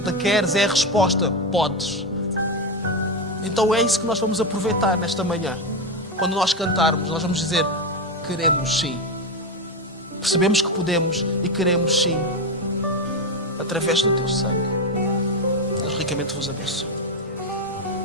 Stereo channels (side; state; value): both; normal; correlation 0.12